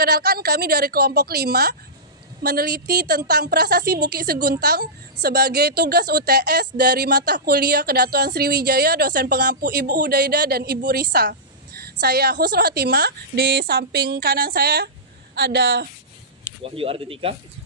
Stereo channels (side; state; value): both; normal; correlation -0.17